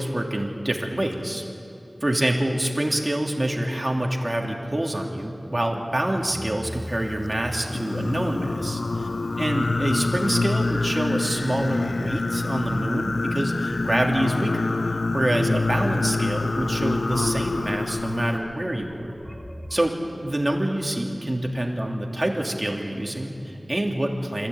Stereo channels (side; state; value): both; normal; correlation 0.97